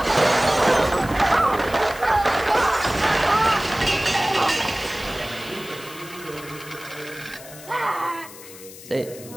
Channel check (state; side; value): noise; left; hiss, 17 dB below the sound